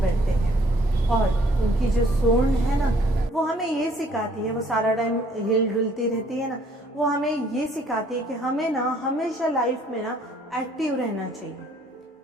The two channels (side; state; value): both; normal; correlation 0.61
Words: हैं। और उनकी जो सूंड है ना, वो हमें ये सिखाती है, वो सारा टाइम हिल डुलती रहती है ना, वो हमें ये सिखाती है कि हमें ना हमेशा लाइफ में ना एक्टिव रहना चाहिए,